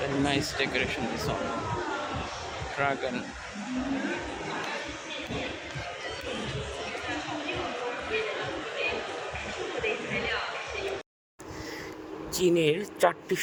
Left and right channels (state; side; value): identical; both; correlation 1.00